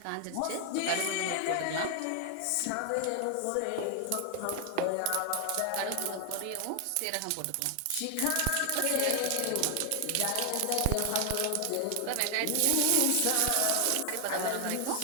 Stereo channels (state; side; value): different; both; correlation 0.00